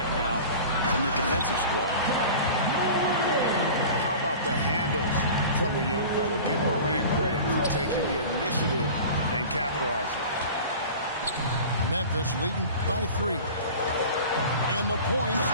now in the defensive squad. How about the handles from the young fellow? Give Morant credit for taking the initiative and capitalizing. Memphis leading by 3. And the points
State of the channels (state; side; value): inverted; both; correlation -0.38